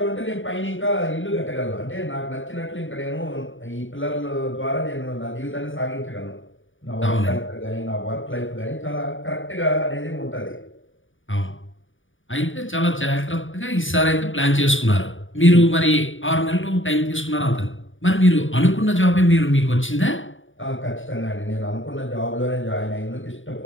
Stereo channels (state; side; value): late; right; 0.57 ms